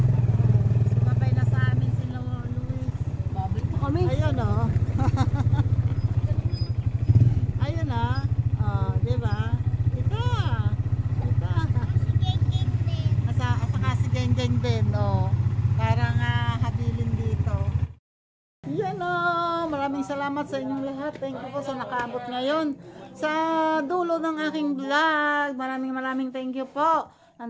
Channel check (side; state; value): both; identical; correlation 1.00